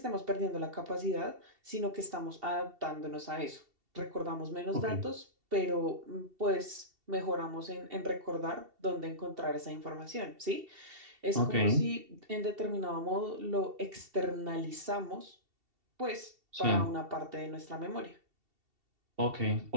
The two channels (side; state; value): left; late; 2.7 ms